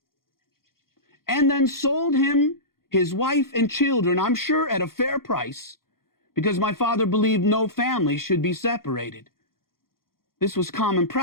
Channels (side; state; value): right; late; 0.92 ms